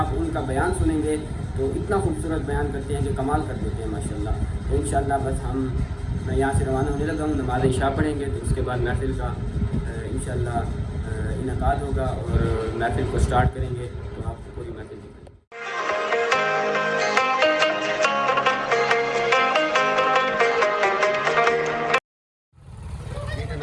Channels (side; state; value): both; identical; correlation 1.00